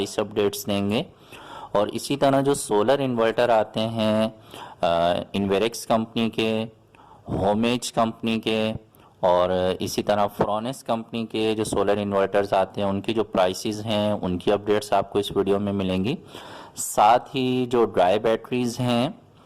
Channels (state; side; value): identical; both; correlation 1.00